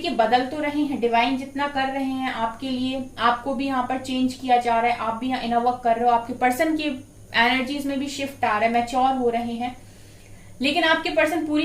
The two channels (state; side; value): identical; both; correlation 1.00